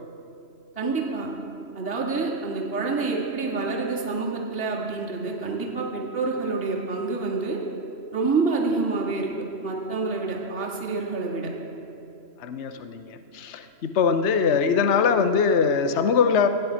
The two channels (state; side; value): late; right; 3.0 ms